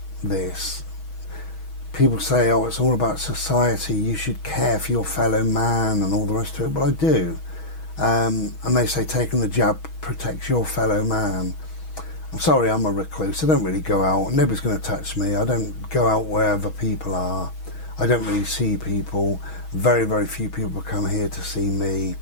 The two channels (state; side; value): late; right; 6.2 ms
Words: this, people say, oh, it's all about society, you should care for your fellow man and all the rest of it. Well, I do. And they say taking the jab protects your fellow man. I'm sorry, I'm a recluse. I don't really go out. Nobody's going to touch me. I don't go out wherever people are. I don't really see people. Very, very few people come here to see me.